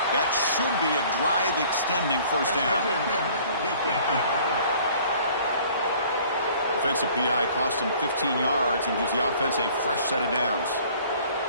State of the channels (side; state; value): both; inverted; correlation -0.53